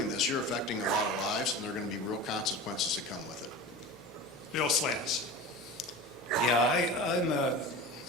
this, you're affecting a lot of lives and there are going to be real consequences that come with it. Bill Slants. Yeah, I'm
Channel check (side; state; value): both; normal; correlation 0.32